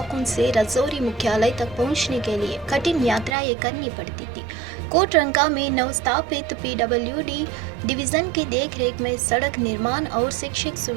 से राजौरी मुख्यालय तक पहुंचने के लिए कठिन यात्राएं करनी पड़ती थी। कोटरंका में नवस्थापित पीडब्ल्यूडी डिवीजन की देखरेख में सड़क निर्माण और शिक्षक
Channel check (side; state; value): left; drops out; at 3.4 s